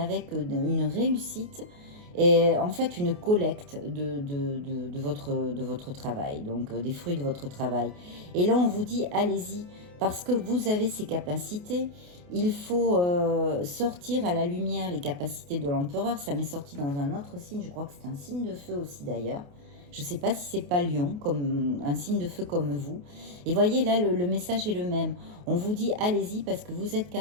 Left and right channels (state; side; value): late; left; 28 ms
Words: une réussite et en fait une collecte de votre travail, donc des fruits de votre travail. Et là, on vous dit, allez-y, parce que vous avez ces capacités. Il faut sortir à la lumière les capacités de l'empereur. Ça m'est sorti dans un autre signe, je crois que c'est un signe de feu aussi d'ailleurs. Je ne sais pas si c'est pas Lion, comme un signe de feu comme vous. Et voyez, là, le message est le même. On vous dit, allez-y parce que vous êtes